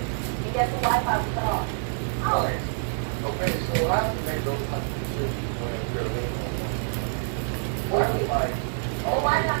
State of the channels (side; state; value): left; silent; digital silence